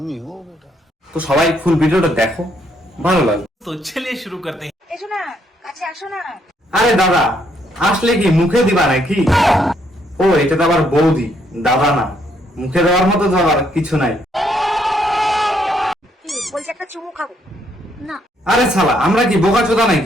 তো সবাই ফুল ভিডিওটা দেখো, ভালো লাগবে। तो चलिए शुरू करते हैं। এসো না, কাছে আসো না। আরে দাদা, আসলে কি মুখে দিবা নাকি? ও, এটা তো আবার বৌদি, দাদা না। মুখে দেওয়ার মতো তো আবার কিছু নাই। কি বলছি, একটা চুমু খাবো না? আরে শালা, আমরা কি বোকাচোদা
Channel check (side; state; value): both; normal; correlation 0.72